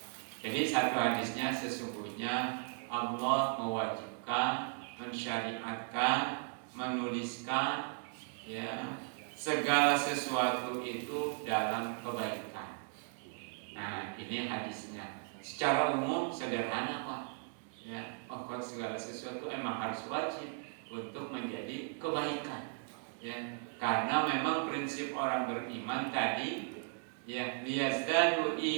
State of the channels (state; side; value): silent; left; 53 dB below the other